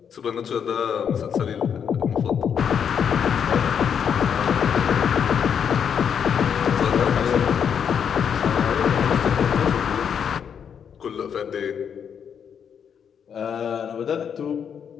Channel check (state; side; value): quieter; right; 7.6 dB